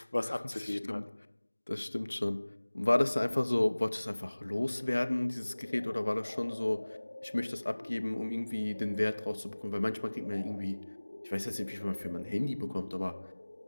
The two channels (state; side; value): inverted; both; correlation -1.00